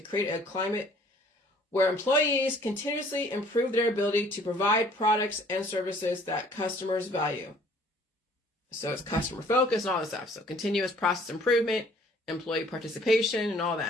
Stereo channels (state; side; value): normal; both; correlation 0.56